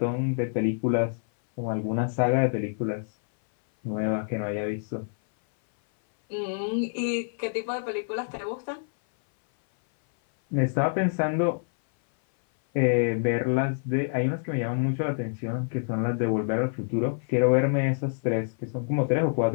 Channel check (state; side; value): silent; right; 57 dB below the other